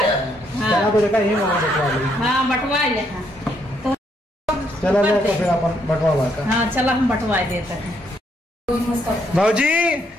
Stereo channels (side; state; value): both; normal; correlation 0.73